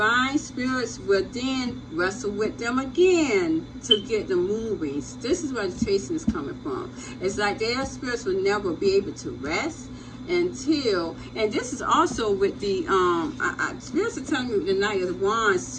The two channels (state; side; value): identical; both; correlation 1.00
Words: spirits will then wrestle with them again to get them moving. So this is where the chasing is coming from. It's like their spirits will never be able to rest until, and this is also with the spirits are telling me with the Knight of Wands